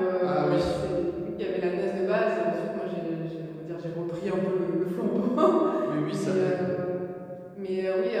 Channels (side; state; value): both; identical; correlation 1.00